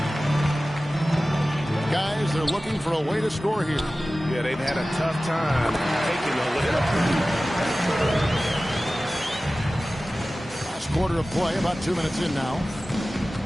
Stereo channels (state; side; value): normal; both; correlation 0.96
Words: Guys, they're looking for a way to score here. Yeah, they've had a tough time taking the lead. Quarter of play, about 2 minutes in now.